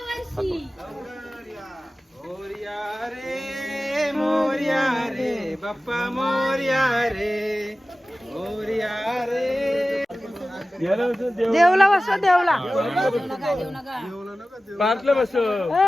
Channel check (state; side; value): normal; both; correlation 0.96